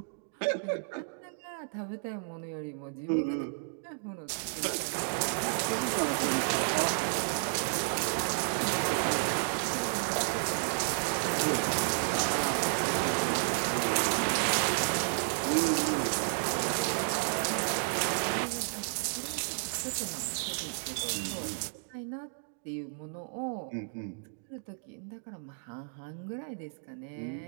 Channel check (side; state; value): left; silent; digital silence